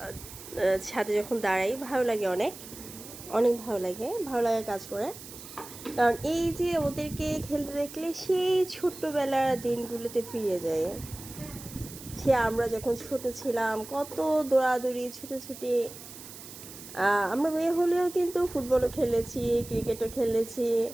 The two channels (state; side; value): noise; right; hiss, 15 dB below the sound